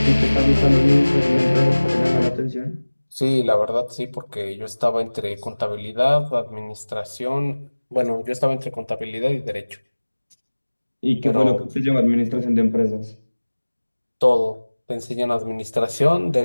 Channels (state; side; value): inverted; both; correlation -1.00